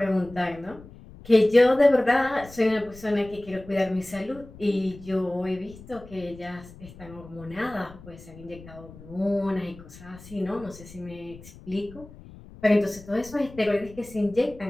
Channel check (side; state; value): left; noise; rumble, 19 dB below the sound